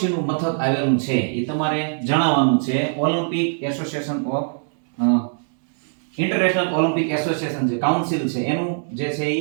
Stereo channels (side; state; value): left; silent; digital silence